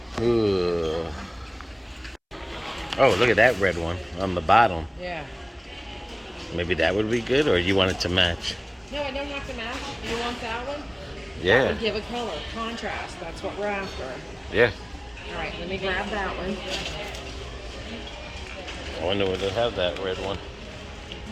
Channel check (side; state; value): both; identical; correlation 1.00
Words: Ooh. Oh, look at that red one on the bottom. Yeah. Maybe that would be good, or you want it to match? No, I don't have to match. You want that one? That Yeah. would give a color, contrast. That's what we're after. Yeah. All right, let me grab that one. I wonder would they have that red one.